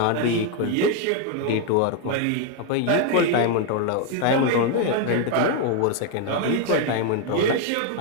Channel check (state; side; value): different; both; correlation 0.01